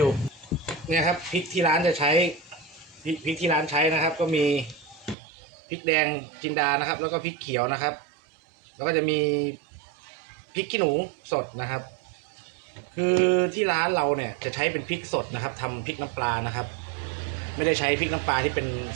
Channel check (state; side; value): drops out; left; at 5.2 s